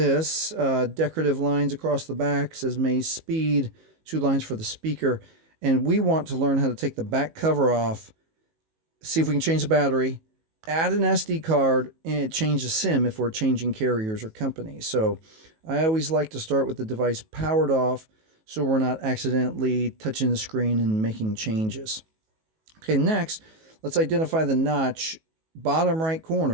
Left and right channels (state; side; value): late; left; 19 ms